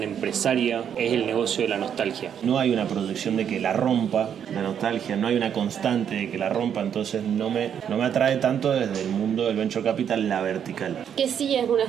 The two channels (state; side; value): quieter; left; 8.6 dB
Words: empresaria es el negocio de la nostalgia? No hay una proyección de que la rompa la nostalgia, no hay una constante de que la rompa, entonces no me atrae tanto desde el mundo del venture capital la vertical. Que sí es una